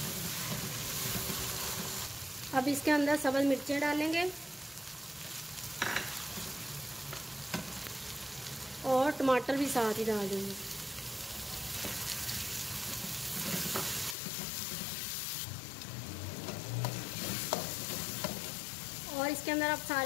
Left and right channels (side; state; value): right; drops out; at 14.2 s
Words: अब इसके अंदर सब्ज़ मिर्चें डालेंगे और टमाटर भी साथ ही डाल देंगे। और इसके अंदर आप